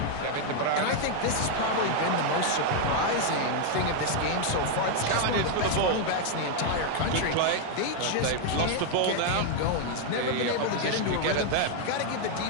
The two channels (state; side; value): different; both; correlation 0.00